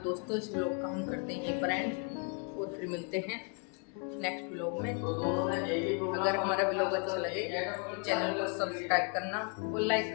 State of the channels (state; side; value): quieter; right; 36.4 dB